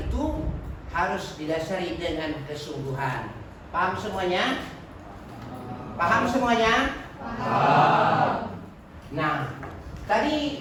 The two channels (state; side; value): identical; both; correlation 1.00